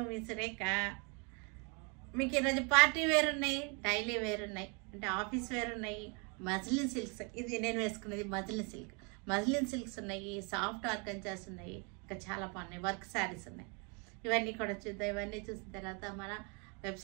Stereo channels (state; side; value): quieter; left; 34.0 dB